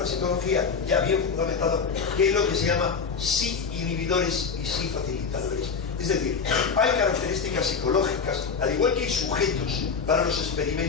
ya bien fundamentado, que es lo que se llama sí inhibidores y sí facilitadores. Es decir, hay características psicológicas, al igual que hay sujetos para los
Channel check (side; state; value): right; quieter; 5.6 dB